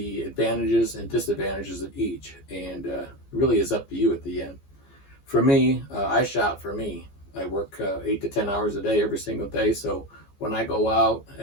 advantages and disadvantages of each, and it really is up to you at the end. For me, I shop for me. I work 8 to 10 hours a day every single day, so when I go out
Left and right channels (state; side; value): late; right; 14 ms